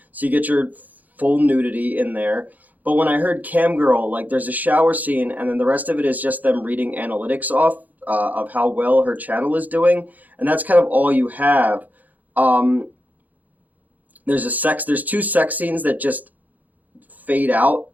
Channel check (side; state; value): left; late; 0.081 ms